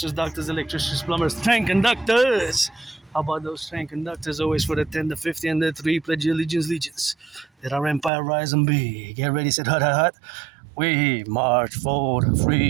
doctors, electricians, plumbers, train conductors. How about those train conductors? Always for the 10, the 50, and the 3. Pledge your allegiance, legions. Let our empire rise and be. Get ready, set hut, hut, hut. We march for the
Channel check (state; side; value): drops out; left; at 8.1 s